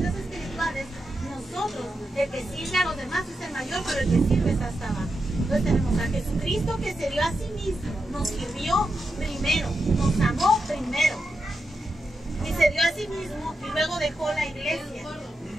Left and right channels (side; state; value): both; normal; correlation 0.87